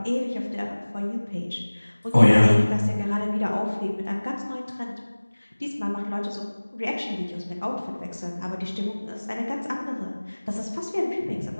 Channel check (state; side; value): inverted; both; correlation -1.00